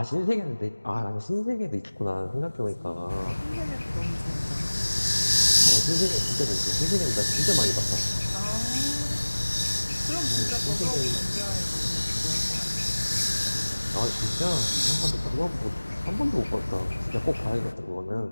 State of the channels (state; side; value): inverted; both; correlation -1.00